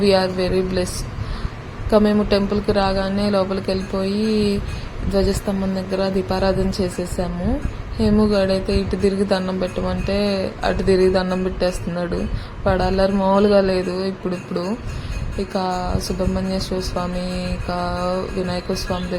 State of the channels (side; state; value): both; identical; correlation 1.00